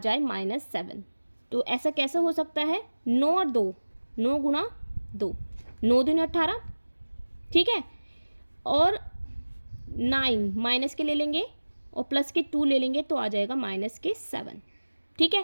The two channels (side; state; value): both; inverted; correlation -1.00